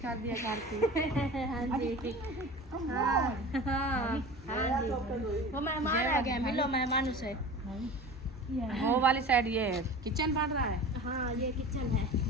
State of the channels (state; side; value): normal; both; correlation 0.36